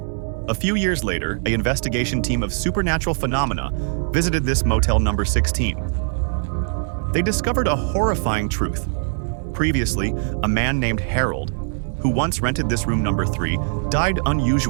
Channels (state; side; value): silent; left; 65 dB below the other